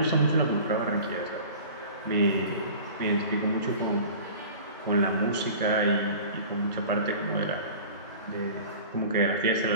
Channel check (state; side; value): inverted; both; correlation -0.41